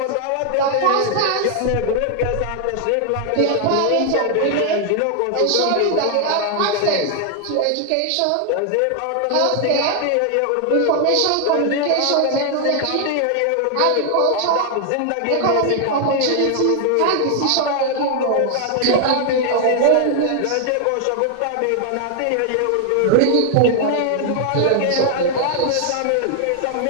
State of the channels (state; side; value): different; both; correlation 0.00